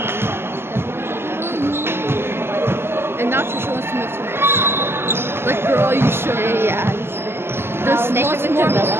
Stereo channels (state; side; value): late; left; 0.11 ms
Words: And now Trisha wants to move to me. Like, girl, are you sure? Yeah. There's They lots live in more.